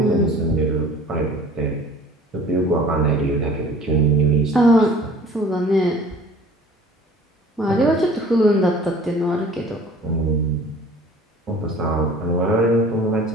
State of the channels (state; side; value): normal; both; correlation 0.48